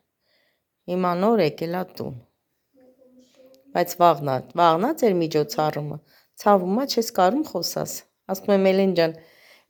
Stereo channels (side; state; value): both; identical; correlation 1.00